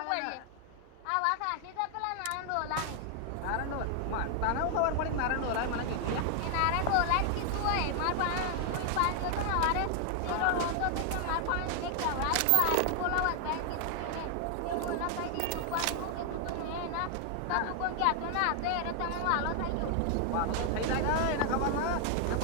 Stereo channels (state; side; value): different; both; correlation 0.00